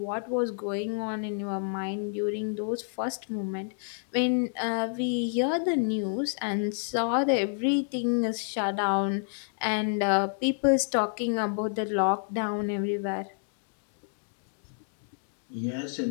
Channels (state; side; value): silent; right; digital silence